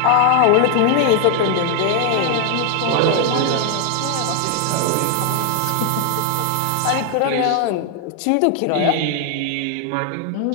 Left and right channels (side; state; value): both; different; correlation 0.00